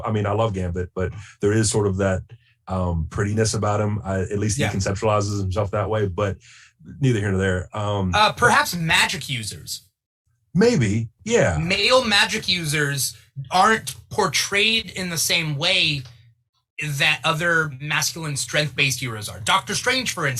I mean, I love Gambit, but there is sort of that prettiness about him. At least he conceptualizes himself that way. But neither here nor there. Perhaps magic users. Maybe, yeah. Male magic users aren't portrayed in the same way that other masculine strength-based heroes are. Doctor Strange, for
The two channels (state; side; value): identical; both; correlation 1.00